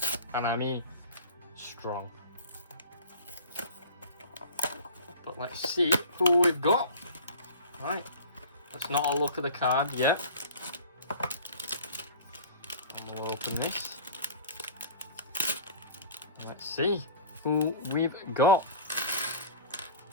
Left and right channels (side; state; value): both; inverted; correlation -0.39